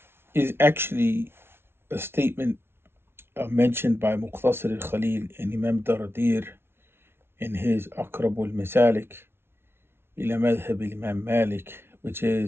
Is actually a statement mentioned by Muqtasir al-Khalil and Imam Dardir in his Aqrab al-Masalik ila Madhab al-Imam Malik, which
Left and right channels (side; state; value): left; late; 0.12 ms